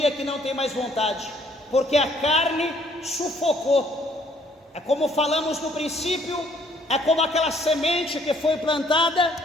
que não tem mais vontade, porque a carne sufocou. É como falamos no princípio, é como aquela semente que foi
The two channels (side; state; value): both; normal; correlation 0.64